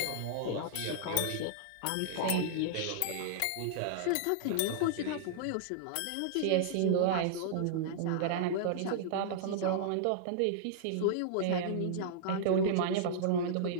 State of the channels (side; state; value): both; different; correlation -0.02